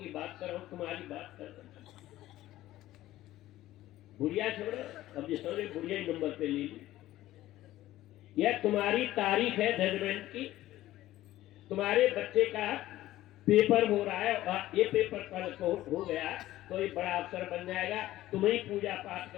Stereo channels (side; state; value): right; quieter; 15.1 dB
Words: बात करो, तुम्हारी बात कर रहे। बुढ़िया छोड़ो, अब जिस समझे बुढ़िया ही नंबर पे ले ली। यह तुम्हारी तारीख है जजमेंट की। तुम्हारे बच्चे का पेपर हो रहा है और ये पेपर कल को हो गया तो ये बड़ा अफसर बन जाएगा। तुम ही पूजा पाठ